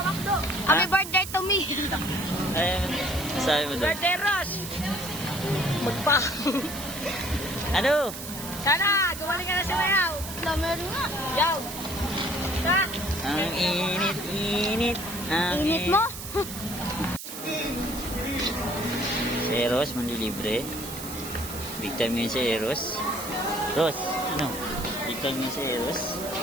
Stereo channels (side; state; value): right; noise; hiss, 9 dB below the sound